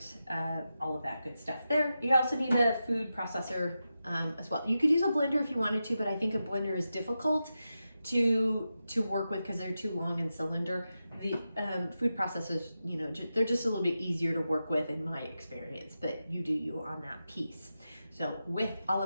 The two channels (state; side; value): inverted; both; correlation -0.90